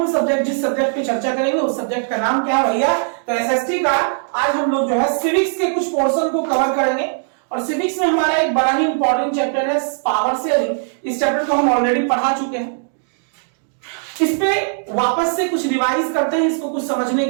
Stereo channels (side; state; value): left; silent; digital silence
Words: जिस subject पे चर्चा करेंगे उस सब्जेक्ट का नाम क्या है भैया? तो एसएसटी का आज हम लोग जो है सिविक्स के कुछ पोर्शन को कवर करेंगे और सिविक्स में हमारा एक बड़ा ही इंपॉर्टेंट चैप्टर है पावर शेयरिंग। इस चैप्टर को हम ऑलरेडी पढ़ा चुके हैं, इस पे वापस से कुछ रिवाइज करते हैं, इसको कुछ समझने